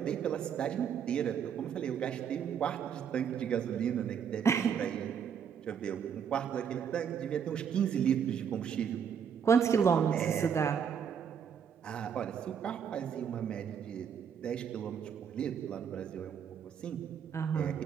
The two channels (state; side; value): quieter; left; 7.6 dB